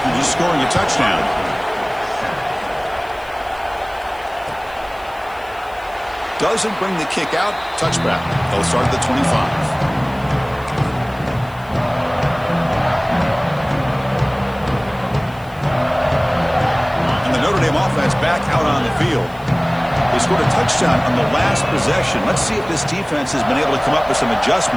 just scoring a touchdown. Doesn't bring the kick out. Touchback. They'll start at the 25. And the Notre Dame offense back out on the field. They scored a touchdown on the last possession. Let's see if this defense has been able to come up with some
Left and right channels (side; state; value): left; noise; hiss, 26 dB below the sound